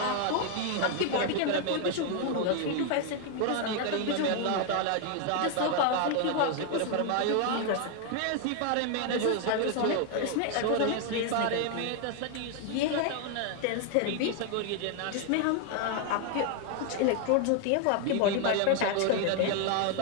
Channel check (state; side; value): different; both; correlation 0.00